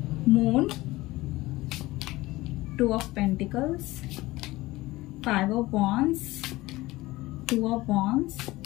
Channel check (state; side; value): quieter; right; 19.2 dB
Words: Moon, 2 of Pentacles, 5 of Wands, 2 of Wands